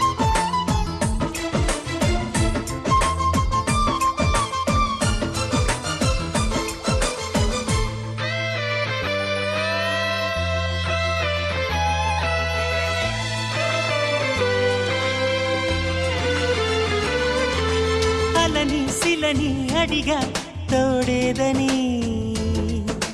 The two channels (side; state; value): both; identical; correlation 1.00